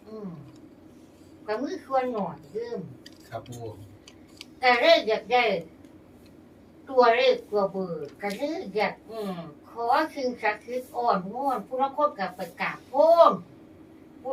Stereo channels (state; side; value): identical; both; correlation 1.00